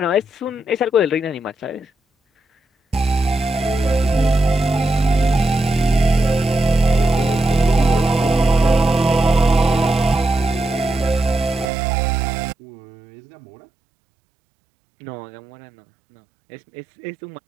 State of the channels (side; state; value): left; drops out; at 11.7 s